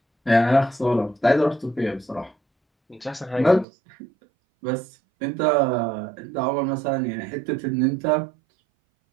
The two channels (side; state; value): left; drops out; at 3.7 s